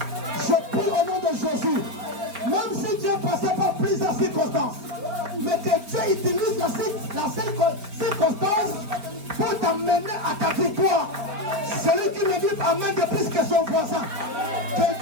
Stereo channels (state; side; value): late; left; 4.9 ms